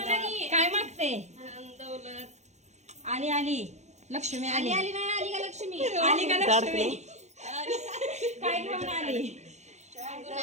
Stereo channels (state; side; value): late; left; 0.33 ms